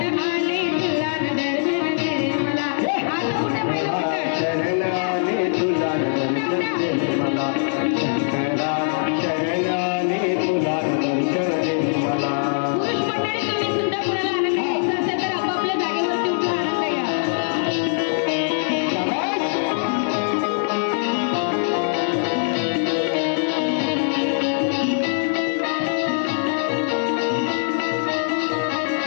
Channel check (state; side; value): silent; right; digital silence